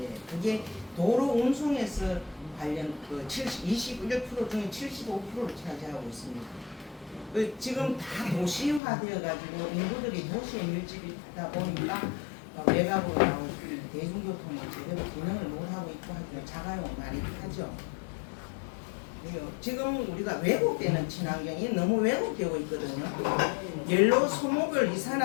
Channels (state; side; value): drops out; right; at 8.8 s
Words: 그게 도로 운송에서 관련 21% 중에 75%를 차지하고 있습니다. 지금 다 도시화되어 가지고 인구들이 도시에 밀집이다 보니까 외곽으로 나올 대중교통이 제대로 기능을 못하고 있고 하기는 자가용 많이 타죠. 지금 우리가 왜곡되는 친환경이 너무 왜곡되고 있거든요. 연료 소모별